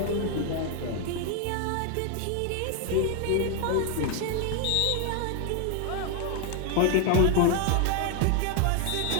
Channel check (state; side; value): different; both; correlation 0.01